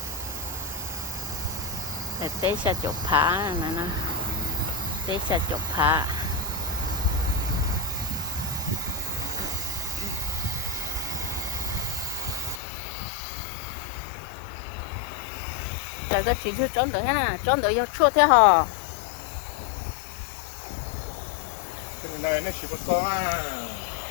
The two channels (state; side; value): drops out; right; at 12.6 s